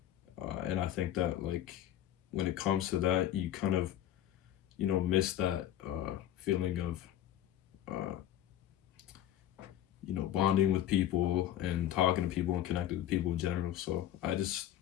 and I think that like when it comes to that, you kind of miss that feeling of uh, bonding with people and talking to people and connecting with people in general. So I just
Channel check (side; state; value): right; quieter; 11.9 dB